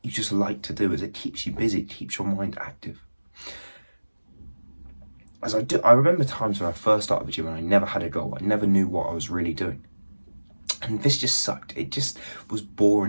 you just like to do, as it keeps you busy. It keeps your mind active. I remember times when I first started the gym and I never had a goal. I never knew what I was really doing. And this just sucked. It just was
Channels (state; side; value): inverted; both; correlation -1.00